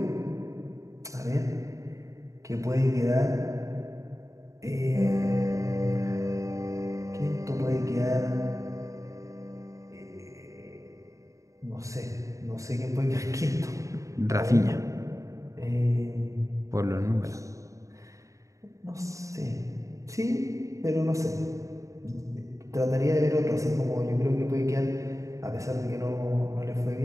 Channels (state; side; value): late; left; 0.15 ms